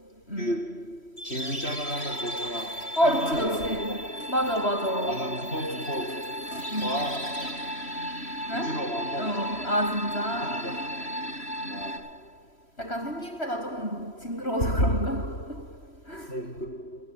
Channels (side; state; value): right; late; 3.1 ms